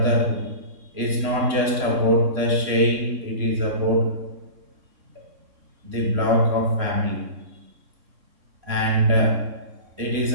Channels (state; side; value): late; left; 3.6 ms